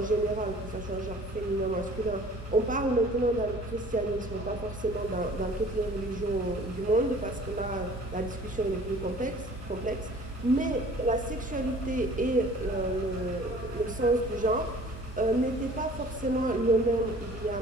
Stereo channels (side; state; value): both; normal; correlation 0.50